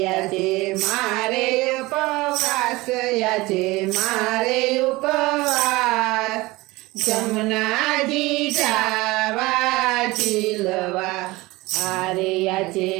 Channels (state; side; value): quieter; left; 21.1 dB